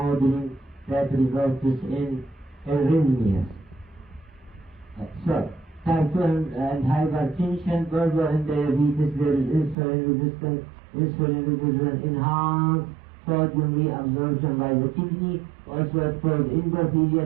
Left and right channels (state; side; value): drops out; left; at 9.8 s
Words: that results in arrhythmias. So, type 2 and hypertension, further in diabetes, there is insulin resistance. Insulin resistance enhance sodium reabsorption by the kidney. Also, it causes